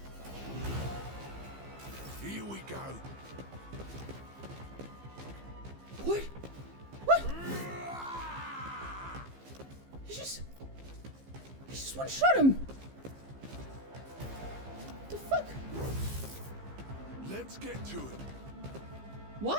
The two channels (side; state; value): left; late; 15 ms